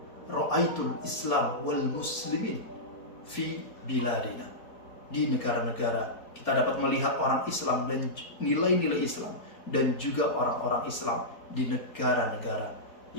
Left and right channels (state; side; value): late; right; 4.3 ms